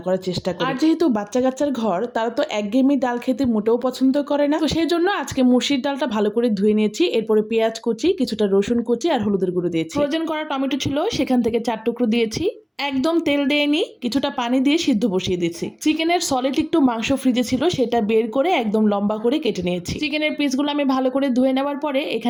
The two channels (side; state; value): both; identical; correlation 1.00